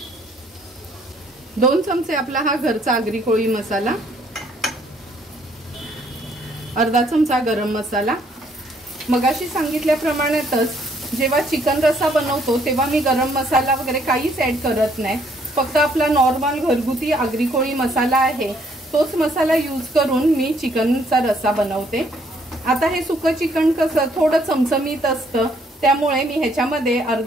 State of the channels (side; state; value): both; normal; correlation 0.66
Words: 2 चमचे आपला हा घरचा आगरी कोळी मसाला, अर्धा चमचा गरम मसाला। मगाशी सांगितल्याप्रमाणेच जेव्हा चिकन रस्सा बनवतो तेव्हा मी गरम मसाला वगैरे काहीच ऍड करत नाही, फक्त आपला नॉर्मल घरगुती आगरी कोळी मसाला आहे तोच मसाला यूज करून मी चिकनचा रस्सा बनवते। आता हे सुकं चिकन कसं थोडं चमचमीत असतं, त्यामुळे मी ह्याच्यामध्ये